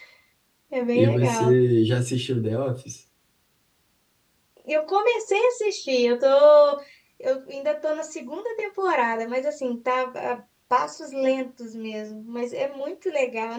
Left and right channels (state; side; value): identical; both; correlation 1.00